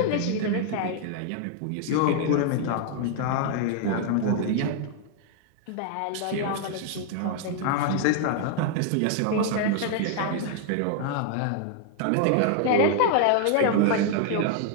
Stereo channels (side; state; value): both; different; correlation 0.00